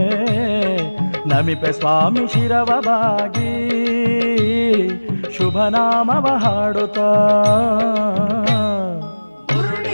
ನಮಿಪೆ ಸ್ವಾಮಿ ಶಿರವವಾಗಿ ಶುಭನಾಮವ ಹಾಡುತ್ತಾ.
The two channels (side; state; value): both; inverted; correlation -1.00